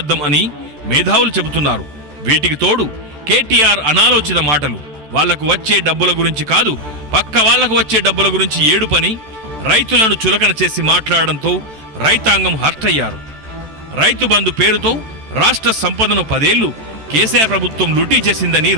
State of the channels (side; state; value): left; late; 14 ms